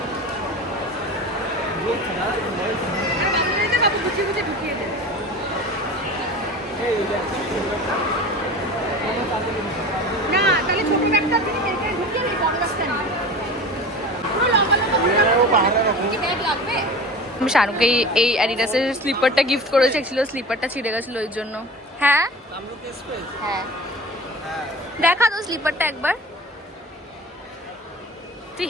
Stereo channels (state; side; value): normal; both; correlation 0.35